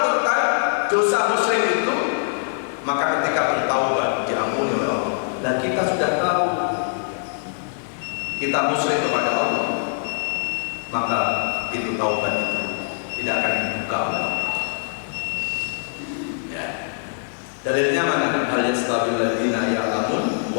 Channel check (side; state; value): right; silent; digital silence